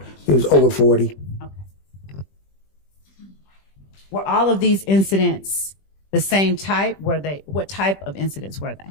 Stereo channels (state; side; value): late; right; 20 ms